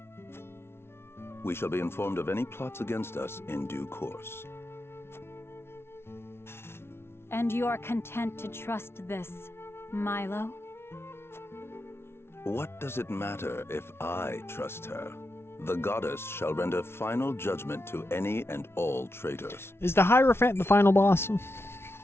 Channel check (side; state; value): right; late; 0.12 ms